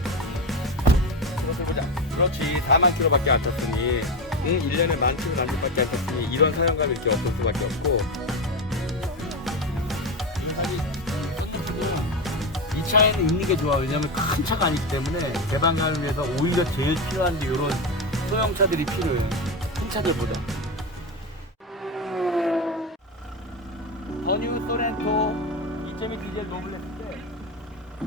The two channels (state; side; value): normal; both; correlation 0.16